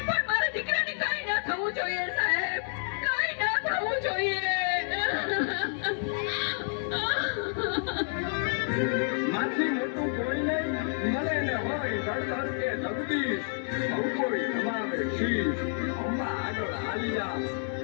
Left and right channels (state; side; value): silent; right; 58 dB below the other